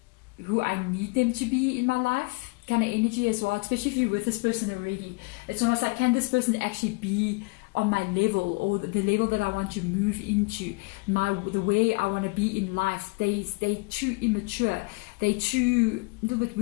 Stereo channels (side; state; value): right; quieter; 27.9 dB